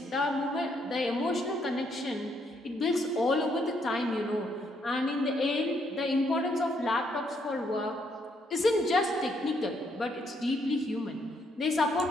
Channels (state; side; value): normal; both; correlation 0.73